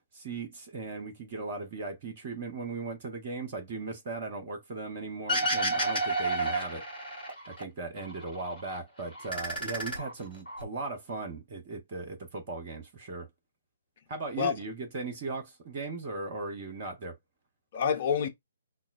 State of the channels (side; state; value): both; inverted; correlation -0.47